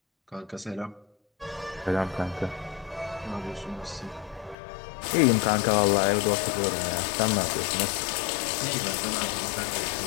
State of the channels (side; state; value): right; drops out; at 4.5 s